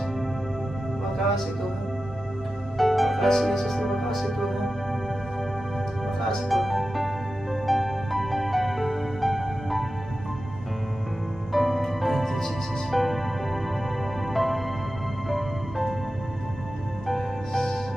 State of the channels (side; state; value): both; normal; correlation 0.93